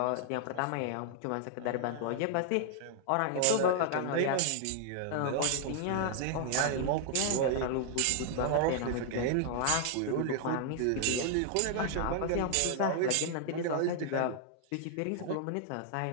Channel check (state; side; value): different; both; correlation 0.00